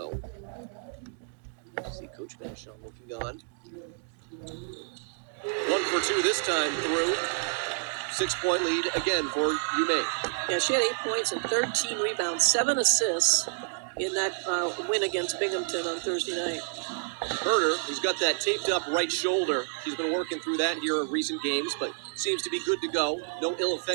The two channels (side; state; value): left; silent; digital silence